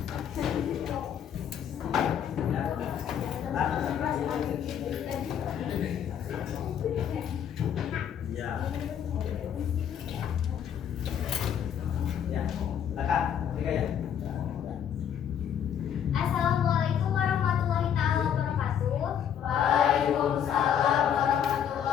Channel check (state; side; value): quieter; right; 9.0 dB